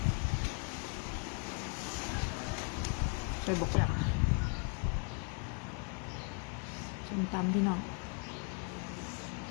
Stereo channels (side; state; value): right; quieter; 37.2 dB